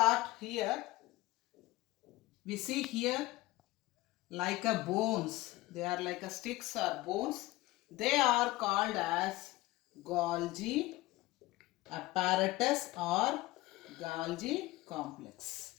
here, we see here like a bones. They are like a sticks or bones. They are called as Golgi apparatus or Golgi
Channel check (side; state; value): right; quieter; 18.8 dB